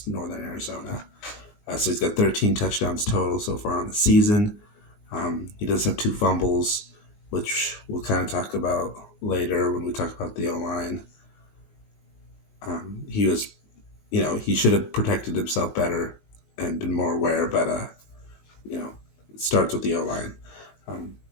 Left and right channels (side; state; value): right; late; 19 ms